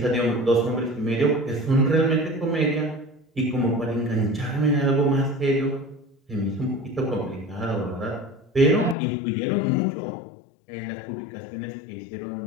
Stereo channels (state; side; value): drops out; right; at 9.0 s